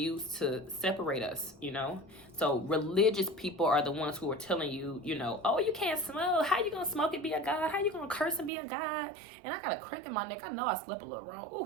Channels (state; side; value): drops out; left; at 8.5 s